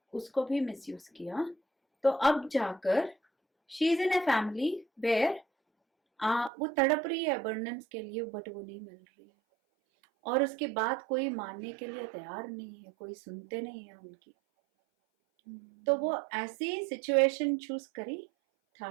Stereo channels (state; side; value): drops out; left; at 6.5 s